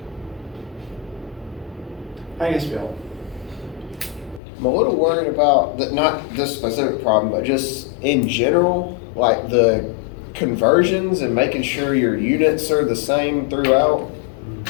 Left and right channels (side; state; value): right; drops out; at 4.4 s